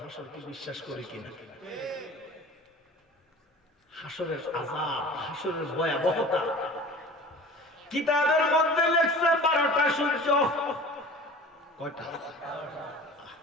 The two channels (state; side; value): normal; both; correlation 0.41